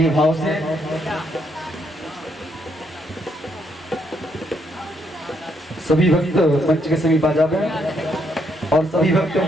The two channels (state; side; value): normal; both; correlation 0.74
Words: भाव से। सभी भक्त मंच के समीप आ जाएं और सभी भक्त